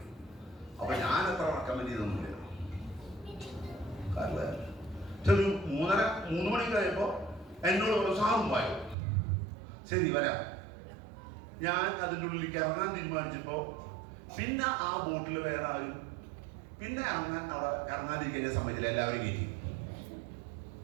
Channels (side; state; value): left; drops out; at 9.0 s